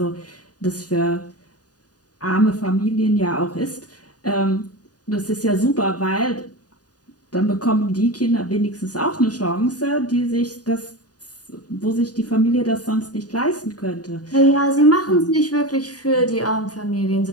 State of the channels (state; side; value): late; right; 0.68 ms